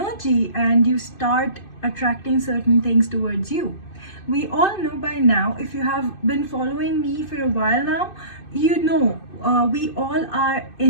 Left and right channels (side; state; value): right; late; 2.6 ms